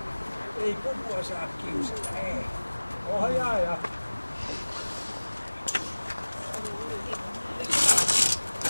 Ei pupua saa kiusata, ei. Ohjaaja.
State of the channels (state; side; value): inverted; both; correlation -1.00